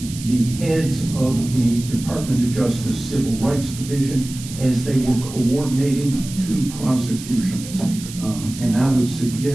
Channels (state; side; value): noise; right; hiss, 13 dB below the sound